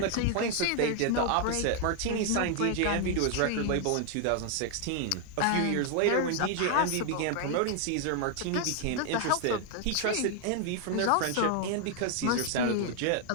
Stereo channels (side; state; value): both; different; correlation 0.00